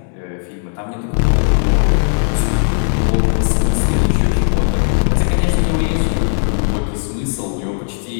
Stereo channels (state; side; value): silent; right; 66 dB below the other